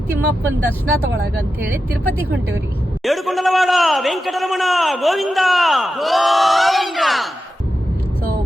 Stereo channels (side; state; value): both; normal; correlation 0.90